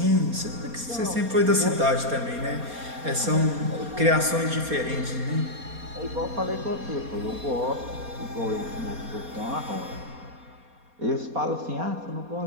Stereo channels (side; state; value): left; late; 4.2 ms